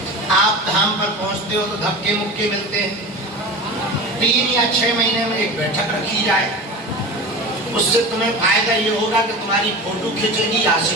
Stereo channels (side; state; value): both; normal; correlation 0.31